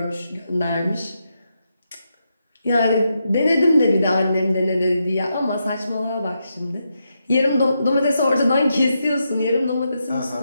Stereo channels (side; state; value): both; inverted; correlation -0.84